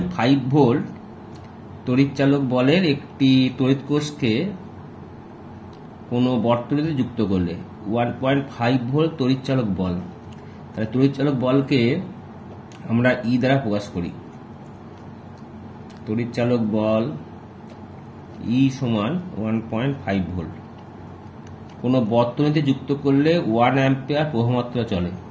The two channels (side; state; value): both; identical; correlation 1.00